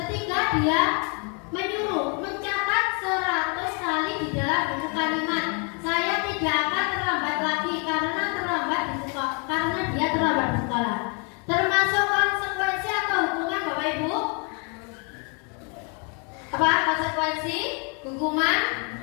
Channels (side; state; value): right; quieter; 36.2 dB